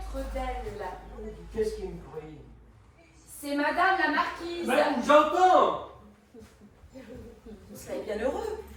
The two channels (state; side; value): identical; both; correlation 1.00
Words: d'elle. Qu'est-ce qu'il me prie? C'est Madame la Marquise. Ben, j'entends! Vous serez bien heureux.